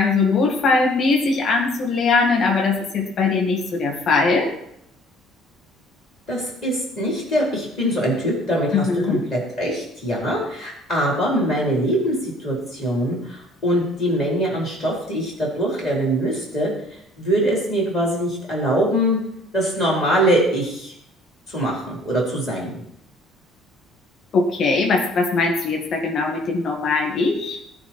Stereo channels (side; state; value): both; normal; correlation 0.55